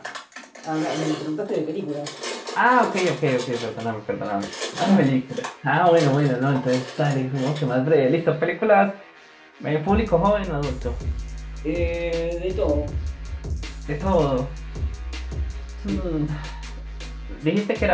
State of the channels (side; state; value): both; identical; correlation 1.00